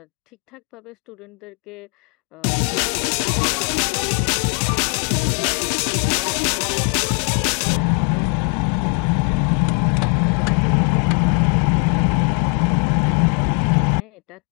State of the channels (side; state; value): right; quieter; 37.7 dB